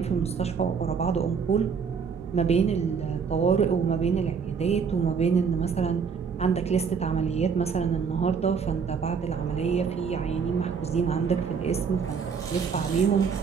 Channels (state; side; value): quieter; left; 6.1 dB